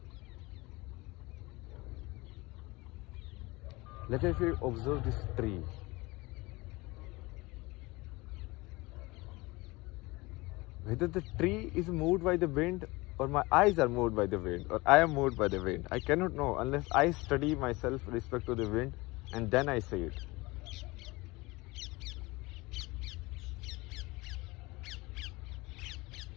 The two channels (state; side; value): quieter; right; 22.9 dB